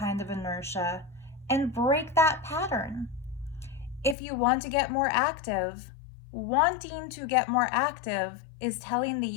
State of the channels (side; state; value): right; drops out; at 4.2 s